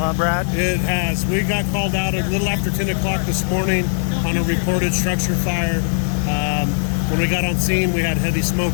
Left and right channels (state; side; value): silent; right; digital silence